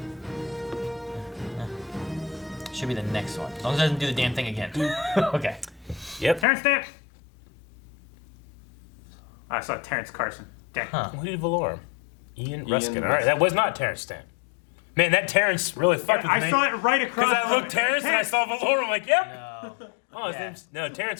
Should be the next one. As long as it doesn't do the damn thing again. Okay. Yep. Terrence Stamp. I saw Terrence Carson. Dang. Huh. Who did Valorum? Ian Ruskin. All right, Ruskin. that was not Terrence Stamp. Man, that Terrence really fucked with me. I saw it right across. Because I looked Terrence and I saw Valorum. I'm like, yep. No. Oh, his name's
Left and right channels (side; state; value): right; drops out; at 6.5 s